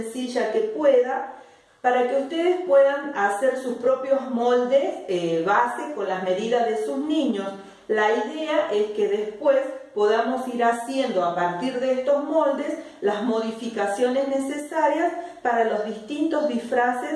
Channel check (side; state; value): both; identical; correlation 1.00